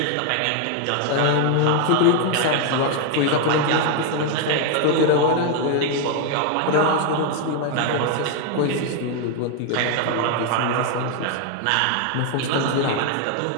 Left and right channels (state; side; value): different; both; correlation 0.01